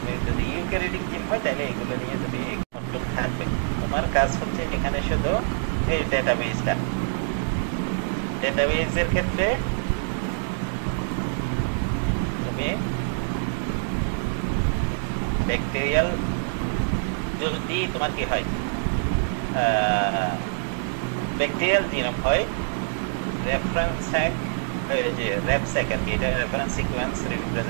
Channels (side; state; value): left; silent; digital silence